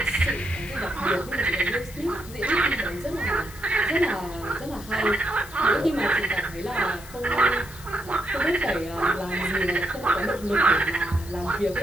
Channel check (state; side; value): noise; left; hiss, 18 dB below the sound